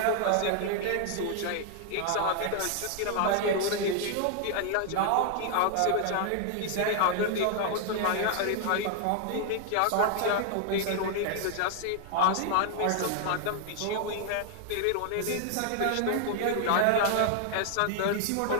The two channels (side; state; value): both; different; correlation 0.00